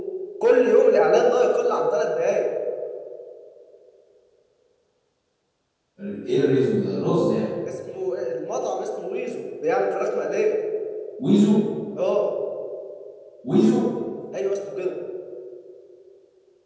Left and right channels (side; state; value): both; identical; correlation 1.00